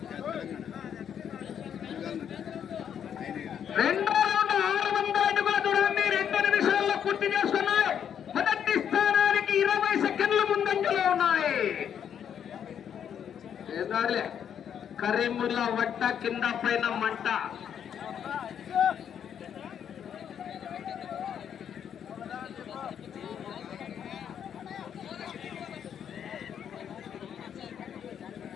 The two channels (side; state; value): right; quieter; 8.6 dB